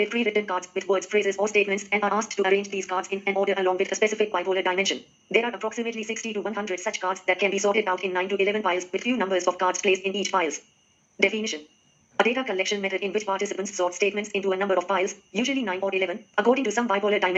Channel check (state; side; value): identical; both; correlation 1.00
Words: pre-written cards with words, phrases, or statements and are asked to arrange these cards in an order along with a specific bipolar dimension. There are approximately 60 to 100 such cards that can be sorted out in 9 to 11 piles with few numbers of cards placed in each piles. Definition. A data collection method in which participants sort statements into a number of piles, usually 9 or 11, according to some bipolar